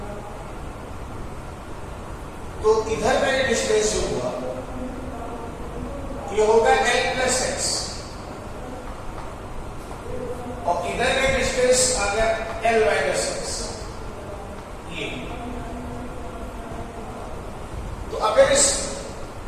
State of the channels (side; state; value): both; identical; correlation 1.00